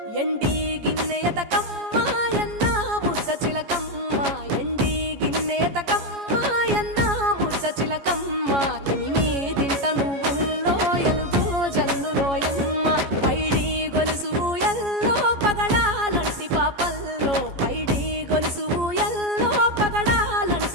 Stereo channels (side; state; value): left; late; 14 ms